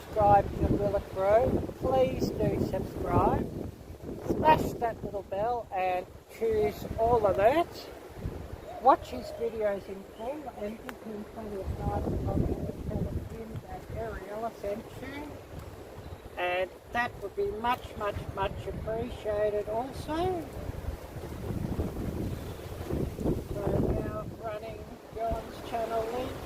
to Willett Bro, please do subscribe. Smash that little bell and choose all alerts. Watch his videos in full and give him plenty of nice comments and tell him that Arielle sent you. And that would be much appreciated also. So now running John's channel link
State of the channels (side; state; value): both; identical; correlation 1.00